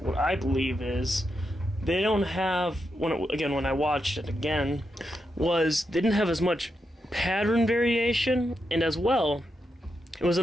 what I believe is, they don't have, when I watched it again, was they didn't have as much pattern variation, and as well, it was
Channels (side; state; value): both; normal; correlation 0.85